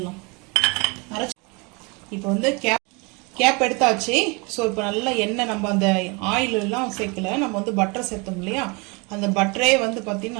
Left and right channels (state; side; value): quieter; left; 29.3 dB